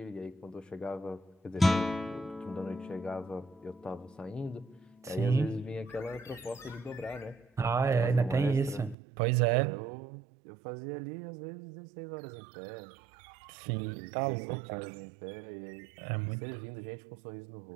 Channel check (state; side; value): drops out; left; at 9.0 s